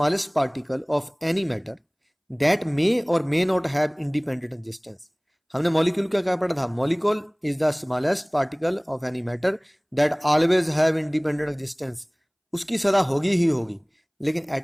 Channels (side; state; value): both; identical; correlation 1.00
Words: particle of any matter that may और may not have independent existence. हमने मॉलिक्यूल क्या पढ़ा था? Molecule is the smallest particle of any matter that always have independent existence. उसकी सदा होगी ही होगी, लेकिन